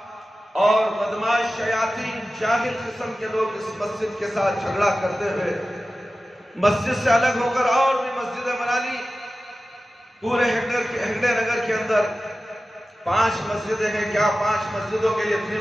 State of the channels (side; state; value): both; normal; correlation 0.95